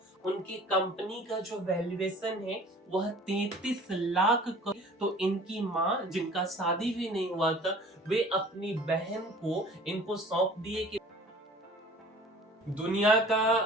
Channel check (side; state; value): both; normal; correlation 0.47